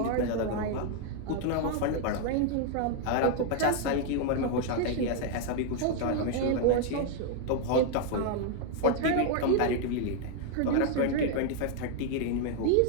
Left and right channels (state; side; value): different; both; correlation 0.00